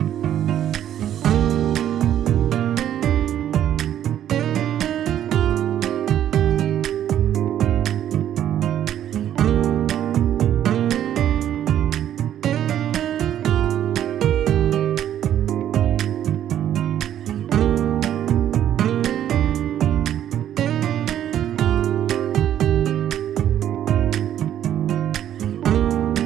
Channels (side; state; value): left; quieter; 10.9 dB